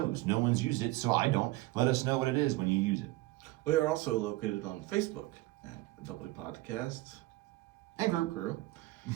No one's used it, so I don't. Let us know what it is when you use it. We are also located on Facebook at the Double Podcast And group. Crew.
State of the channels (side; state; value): left; quieter; 18.8 dB